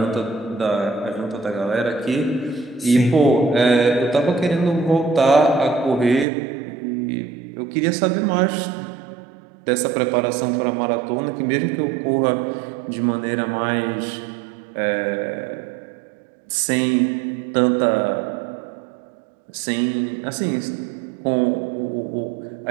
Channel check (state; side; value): drops out; left; at 6.2 s